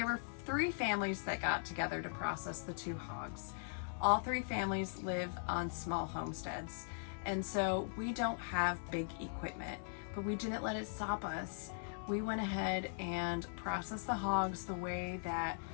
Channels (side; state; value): right; silent; 51 dB below the other